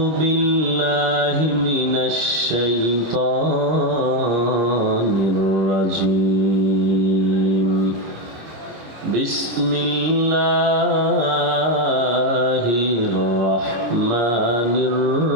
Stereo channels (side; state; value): left; late; 26 ms